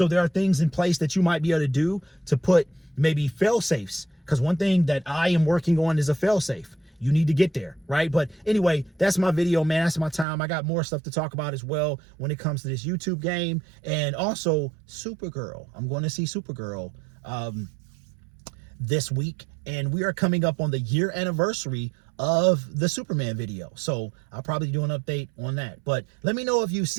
there are things in place that you might be able to do to put maybe fail safes. Because one thing that I am working on is a fail safe. You need to get there, right? But anyway, that's my video, man. That's my time. I got more stuff to talk about as well when it comes to this YouTube game. And also Supergirl. I'm going to see Supergirl this week. And we are coming up on the year anniversary of the Superman video. So I'll probably do an update on that. But let me know if you've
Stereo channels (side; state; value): left; drops out; at 10.2 s